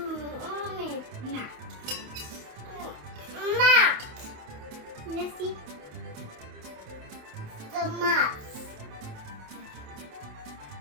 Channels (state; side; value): late; left; 28 ms